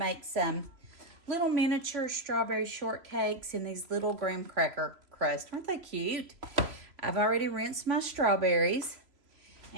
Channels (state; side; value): late; left; 3.0 ms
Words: some little miniature strawberry shortcakes in these little graham cracker crust. Aren't they cute? I've already rinsed my strawberries,